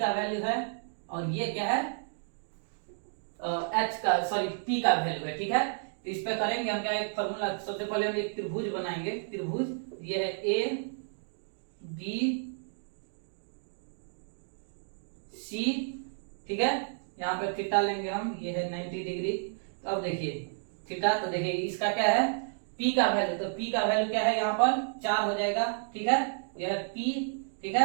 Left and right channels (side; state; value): left; silent; digital silence